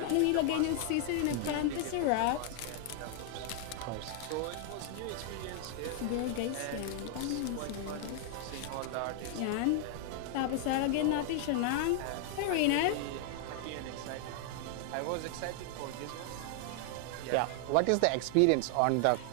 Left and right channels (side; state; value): both; different; correlation 0.00